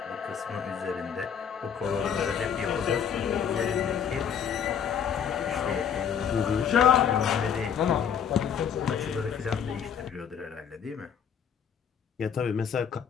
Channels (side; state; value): right; quieter; 7.8 dB